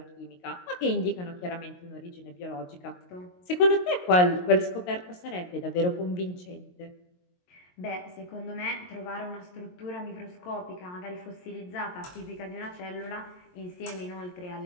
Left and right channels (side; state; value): right; late; 22 ms